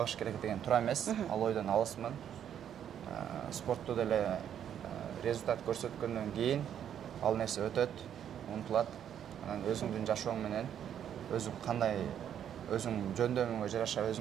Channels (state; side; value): quieter; left; 9.4 dB